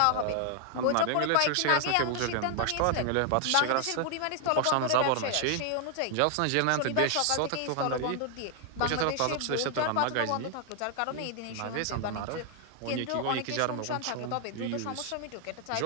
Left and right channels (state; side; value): different; both; correlation 0.00